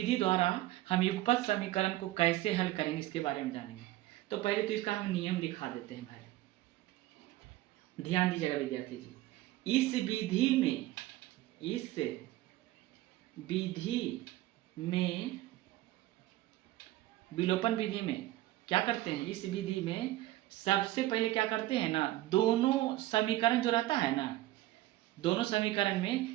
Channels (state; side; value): quieter; left; 16.3 dB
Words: द्वारा हम युगपत समीकरण को कैसे हल करेंगे इसके बारे में जानेंगे। तो पहले तो इसका हम नियम लिखा देते हैं भाई, ध्यान दीजिएगा विद्यार्थी जी। इस विधि में विलोपन विधि में क्या करते हैं? इस विधि में सबसे पहले क्या करते हैं ना, दोनों समीकरण जो रहता है ना, दोनों समीकरण